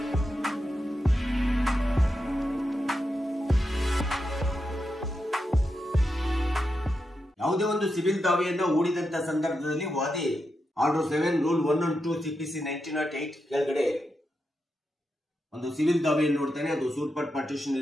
ಯಾವುದೇ ಒಂದು ಸಿವಿಲ್ ದಾವೆಯನ್ನು ಹೂಡಿದಂತ ಸಂದರ್ಭದಲ್ಲಿ ವಾದಿ ಆರ್ಡರ್ 7 ರೂಲ್ 1 and 2 CPC 1908 ಕೆಳಗಡೆ ಒಂದು ಸಿವಿಲ್ ದಾವೆಯನ್ನು ನೋಡ್ತಾನೆ. ಅದು ಸೂಪರ್ ಪಾರ್ಟಿಷನ್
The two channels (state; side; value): normal; both; correlation 0.87